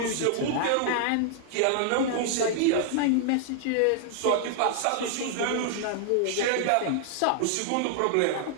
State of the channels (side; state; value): both; different; correlation 0.00